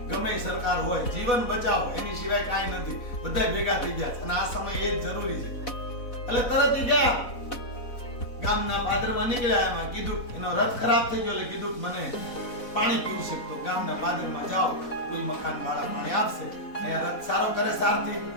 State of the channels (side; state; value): right; late; 4.1 ms